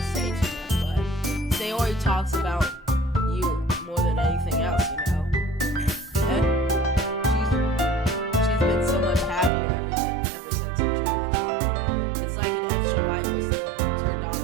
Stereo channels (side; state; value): left; drops out; at 9.5 s